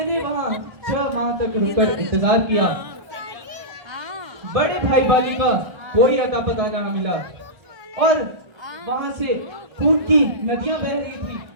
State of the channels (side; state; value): left; late; 1.4 ms